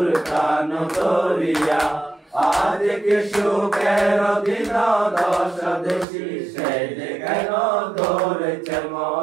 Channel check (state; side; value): drops out; left; at 6.1 s